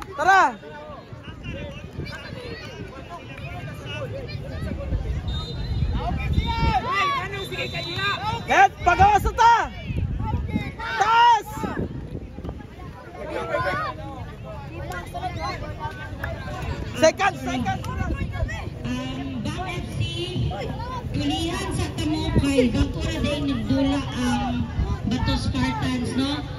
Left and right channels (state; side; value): identical; both; correlation 1.00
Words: Tara. Head, pagawas na ta! Taas! Second! Bang FC, tulihan sa tamo kay Bakura day nagdula ang Bato Spartans, no?